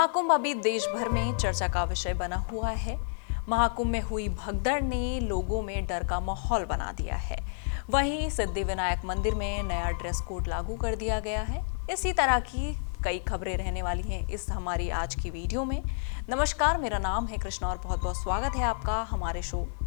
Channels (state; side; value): silent; right; digital silence